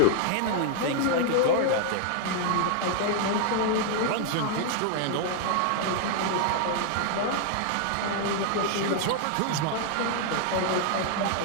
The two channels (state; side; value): different; both; correlation 0.00